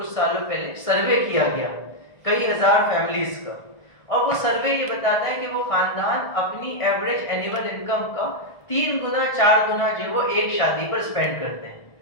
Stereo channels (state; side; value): late; right; 1.6 ms